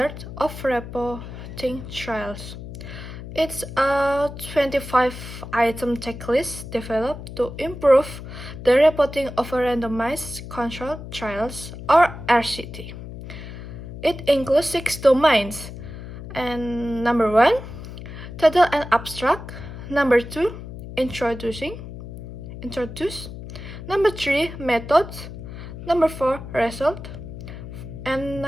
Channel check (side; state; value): left; noise; hum, 11 dB below the sound